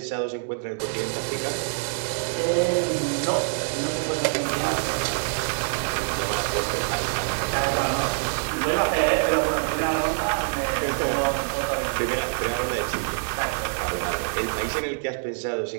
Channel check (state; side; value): silent; left; digital silence